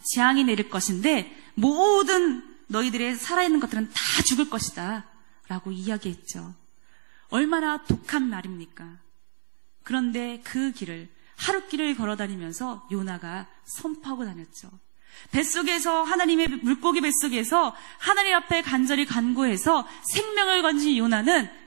재앙이 내릴 것인데 모든 너희들의 살아있는 것들은 다 죽을 것이다 라고 이야기했죠. 얼마나 독한 말입니까? 그런데 그 길을 하룻길을 걸어다니면서 요나가 선포하고 다녔죠. 뱃속에서 하나님의 물고기 뱃속에서 하나님 앞에 간절히 간구해서 생명을 건진 요나는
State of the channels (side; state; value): left; silent; 61 dB below the other